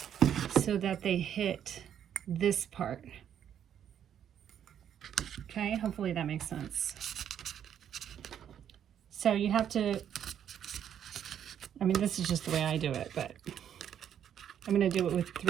so that they hit this part. Okay, hopefully that makes sense. So you have to, I mean, this is just the way I do it, but I'm going to do it with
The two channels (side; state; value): left; quieter; 9.4 dB